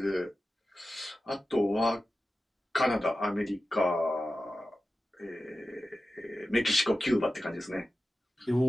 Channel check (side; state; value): both; normal; correlation 0.94